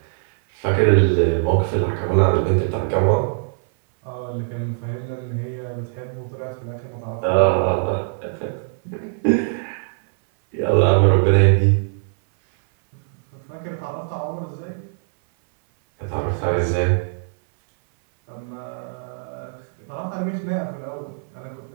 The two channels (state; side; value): silent; left; 59 dB below the other